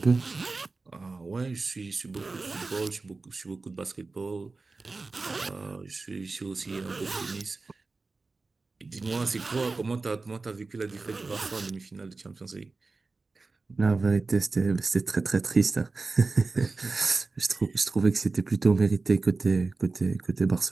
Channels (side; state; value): left; quieter; 3.8 dB